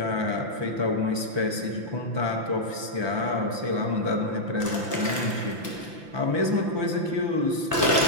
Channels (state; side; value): late; left; 5.9 ms